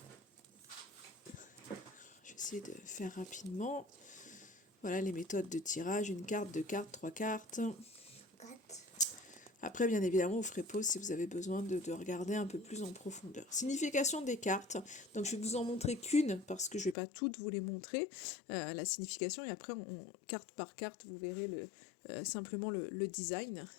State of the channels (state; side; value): drops out; right; at 16.9 s